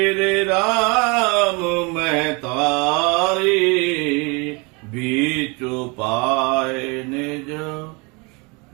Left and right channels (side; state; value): left; quieter; 29.6 dB